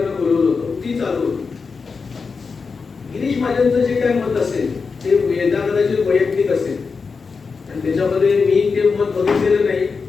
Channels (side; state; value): right; quieter; 4.9 dB